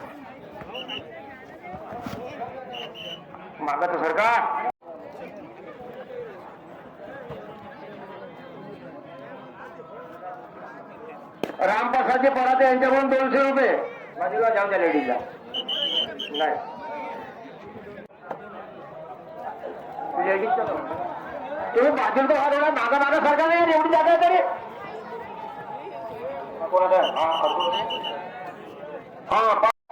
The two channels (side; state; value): both; identical; correlation 1.00